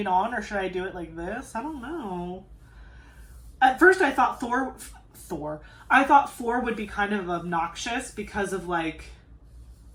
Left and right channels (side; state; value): both; identical; correlation 1.00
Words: on, or should I do it like this? I don't know. At first I thought Thor. I thought 4 would be kind of obnoxious because of like,